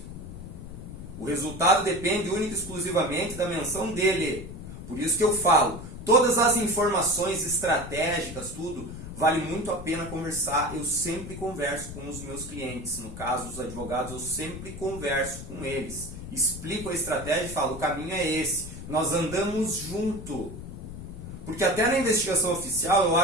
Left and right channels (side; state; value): left; noise; rumble, 11 dB below the sound